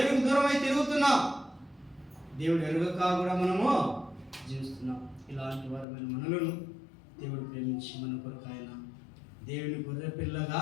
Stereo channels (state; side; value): drops out; right; at 5.9 s